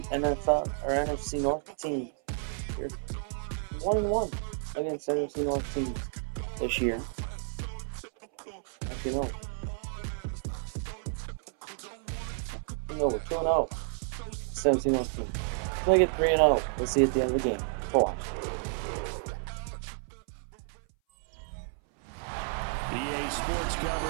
NFL or NFC North teams. They're 1-1 against NFC North teams this year. Actually, no. No, we're 2-0. NFC North team. We'll get 3-0. We'll see at the end of the game. Watch. EA Sports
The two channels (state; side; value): silent; left; 57 dB below the other